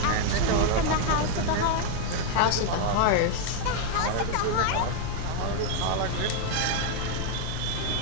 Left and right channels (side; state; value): both; different; correlation 0.01